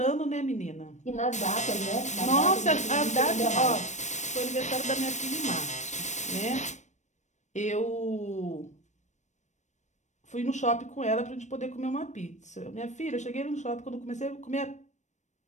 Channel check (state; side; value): late; right; 0.34 ms